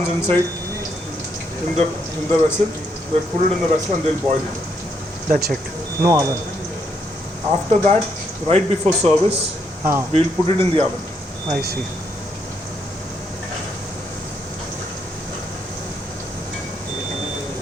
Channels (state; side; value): normal; both; correlation 0.75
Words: inside in the vessel. They put it in the vessel and they'll boil it. That's it. No oven. After that, right before service, Ah, we'll put it in the oven. I see.